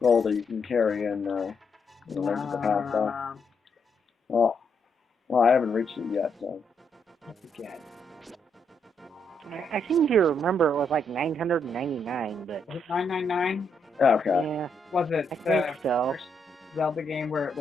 gold that you can carry in the Link to the Past? Well, I haven't reached it yet, so. I forget. I seem to remember it was like 999, but Was it 999? Okay. yeah, Was it I the think so. first Zelda game where it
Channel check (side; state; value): both; normal; correlation 0.77